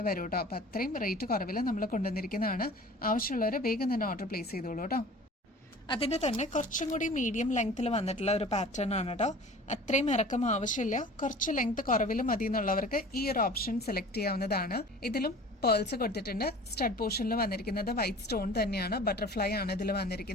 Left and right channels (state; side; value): normal; both; correlation 0.43